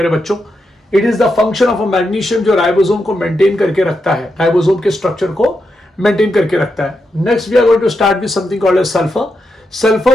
बच्चों. It is the function of a magnesium जो राइबोसोम को मेंटेन करके रखता है, राइबोसोम के स्ट्रक्चर को मेंटेन करके रखता है. Next we are going to start with something called as sulphur.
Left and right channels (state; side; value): normal; both; correlation 0.85